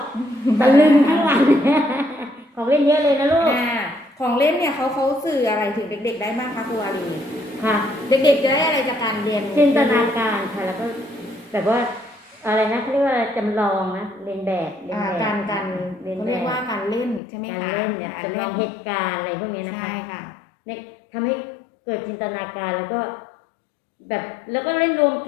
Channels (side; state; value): right; drops out; at 17.2 s